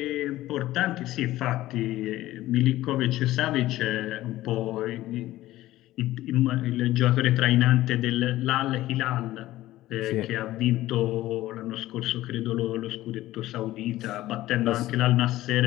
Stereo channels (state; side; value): quieter; right; 15.8 dB